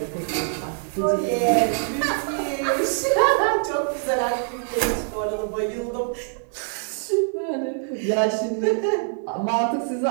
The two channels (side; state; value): left; silent; 58 dB below the other